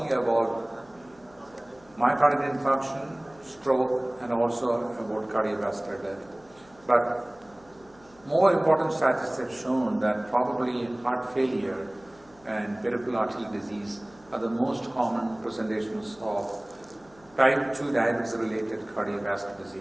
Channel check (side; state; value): left; noise; hum, 28 dB below the sound